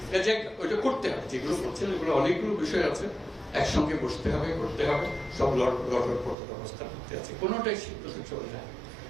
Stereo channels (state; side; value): drops out; left; at 6.4 s